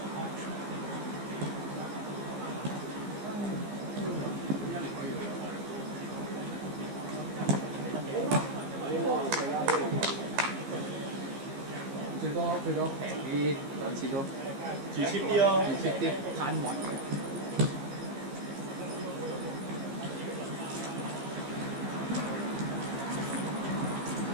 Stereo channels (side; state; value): left; late; 15 ms